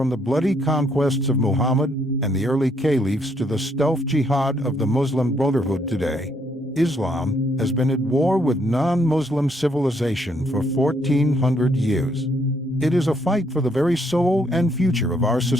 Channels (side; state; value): both; normal; correlation 0.71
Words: the bloody conquests of Muhammad and the early caliphs to the stealth jihad of the Muslim Brotherhood today, Islam has been at war with non-Muslim civilization for 1400 years. It is a fight for the very soul and future of our